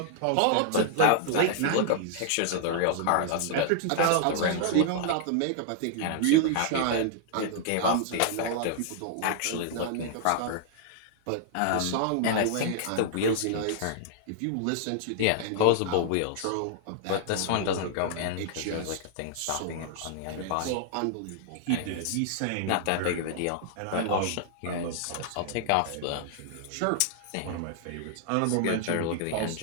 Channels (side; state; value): both; different; correlation -0.01